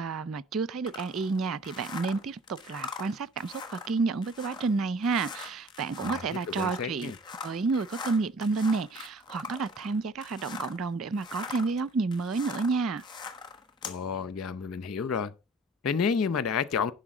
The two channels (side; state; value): both; normal; correlation 0.49